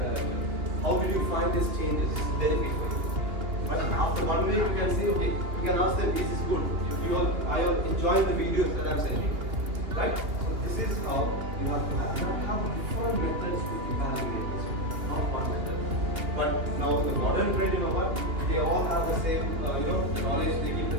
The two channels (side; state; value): left; late; 2.8 ms